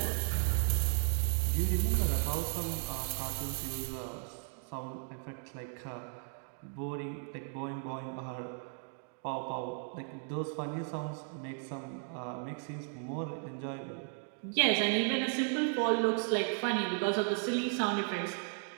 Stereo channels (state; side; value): silent; left; 54 dB below the other